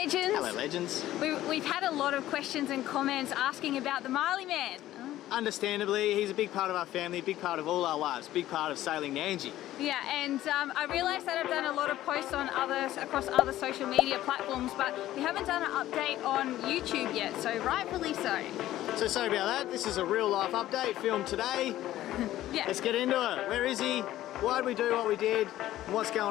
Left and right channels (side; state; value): right; quieter; 14.1 dB